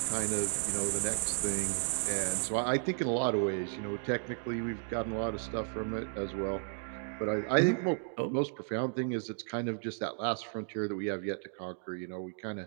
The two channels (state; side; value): silent; left; 55 dB below the other